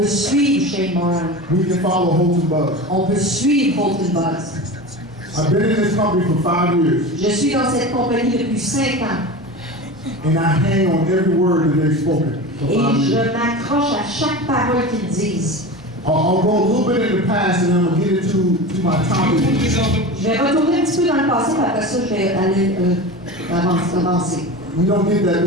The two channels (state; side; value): normal; both; correlation 0.30